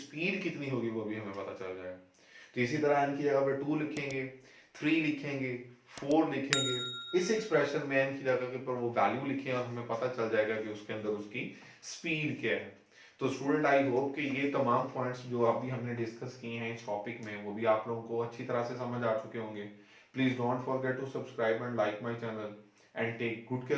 कितनी होगी वो भी हमें पता चल जाएगा। तो इसी तरह n की जगह पे 2 लिखेंगे, 3 लिखेंगे, 4 लिखेंगे, इस एक्सप्रेशन में n की जगह के ऊपर वो वैल्यू लिखें और हमें पता चल जाएगा कि उसके अंदर उसकी स्पीड क्या है। तो स्टूडेंट आई होप कि ये तमाम पॉइंट्स जो अभी हमने डिस्कस किए हैं इस टॉपिक में वो भी आप लोगों को अच्छी तरह से समझ आ चुके होंगे। Please don't forget to subscribe and like my channel and take good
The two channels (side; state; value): both; identical; correlation 1.00